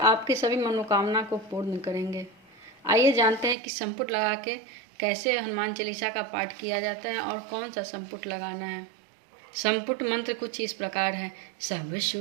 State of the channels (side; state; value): left; drops out; at 3.6 s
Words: सभी मनोकामना को पूर्ण करेंगे। आइए जानते हैं कि संपुट लगा के कैसे हनुमान चालीसा का पाठ किया जाता है और कौन सा संपुट लगाना है। संपुट मंत्र कुछ इस प्रकार है। सब